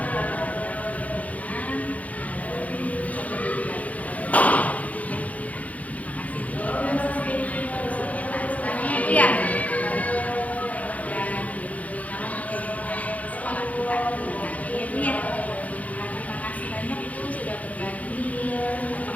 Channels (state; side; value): late; right; 0.070 ms